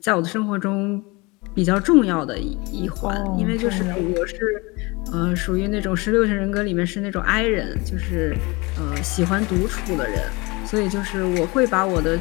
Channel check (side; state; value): right; quieter; 25.5 dB